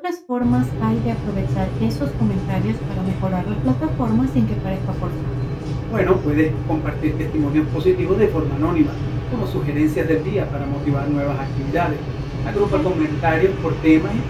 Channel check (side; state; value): both; identical; correlation 1.00